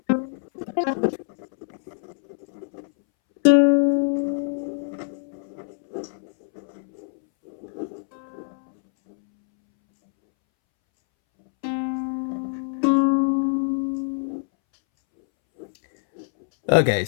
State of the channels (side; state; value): right; silent; 62 dB below the other